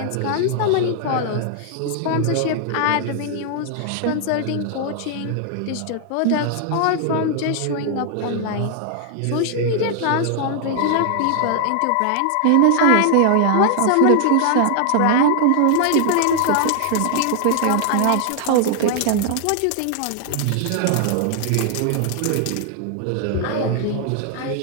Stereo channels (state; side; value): different; both; correlation 0.00